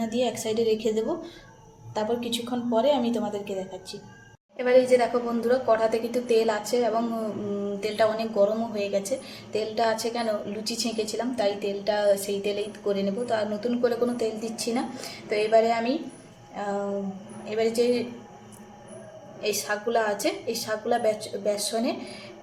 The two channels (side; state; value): both; identical; correlation 1.00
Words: দিয়ে এক সাইডে রেখে দেবো। তারপর কিছুক্ষণ পরে আমি তোমাদেরকে দেখাচ্ছি। এবার এই যে দেখো বন্ধুরা, কড়াতে কিন্তু তেল আছে, এবং তেলটা অনেক গরমও হয়ে গেছে। তেলটা আছে কেন, লুচি ছেঁকেছিলাম তাই তেলটা সেই তেলেই করে নেব। তো আর নতুন করে কোনো তেল দিচ্ছি না। তো এবারে আমি এবারে যে এই শাকগুলো আছে, এই শাকগুলো বেসনে